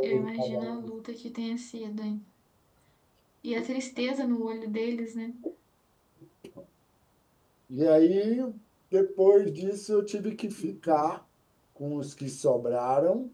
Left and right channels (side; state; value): both; identical; correlation 1.00